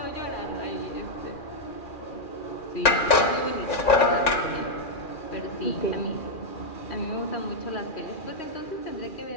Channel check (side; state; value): right; late; 2.4 ms